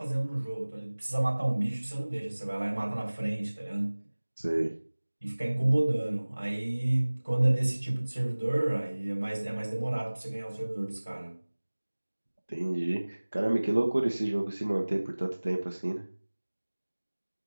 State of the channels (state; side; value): inverted; both; correlation -1.00